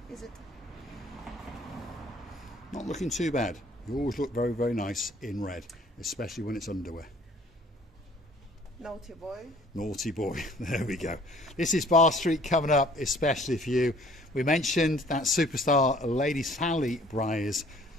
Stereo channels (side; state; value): both; normal; correlation 0.56